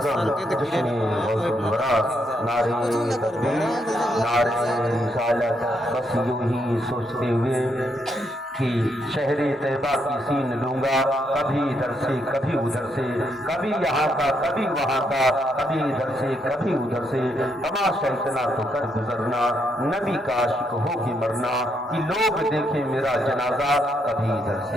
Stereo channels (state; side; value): normal; both; correlation 0.77